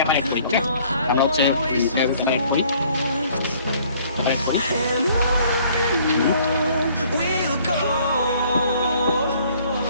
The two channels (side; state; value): both; inverted; correlation -0.59